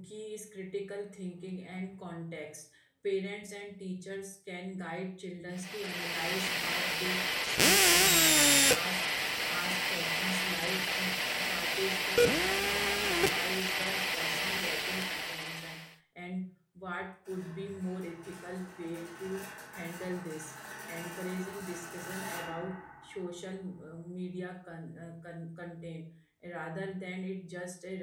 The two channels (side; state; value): both; identical; correlation 1.00